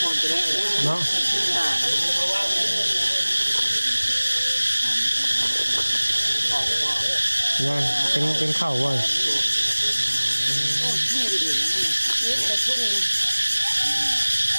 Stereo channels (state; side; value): inverted; both; correlation -1.00